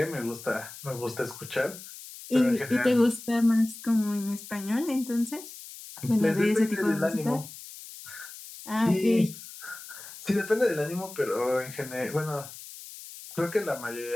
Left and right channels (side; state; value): left; noise; hiss, 14 dB below the sound